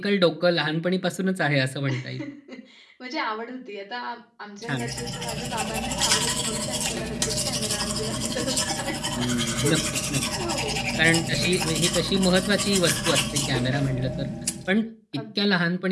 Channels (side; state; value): both; identical; correlation 1.00